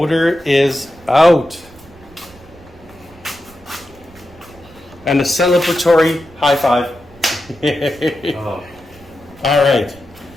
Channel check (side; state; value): right; noise; rumble, 24 dB below the sound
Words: is out. And a celebratory high five. Oh. All right.